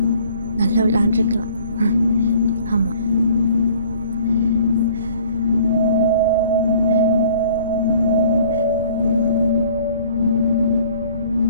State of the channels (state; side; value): inverted; both; correlation -0.54